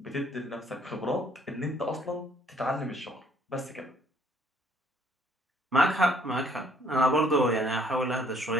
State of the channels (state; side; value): normal; both; correlation 0.63